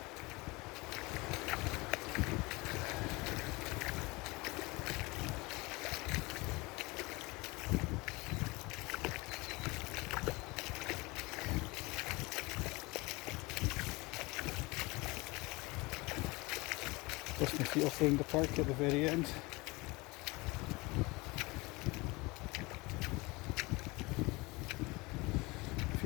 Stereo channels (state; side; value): quieter; right; 24.1 dB